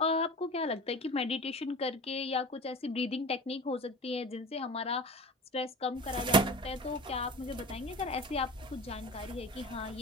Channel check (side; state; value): both; normal; correlation 0.35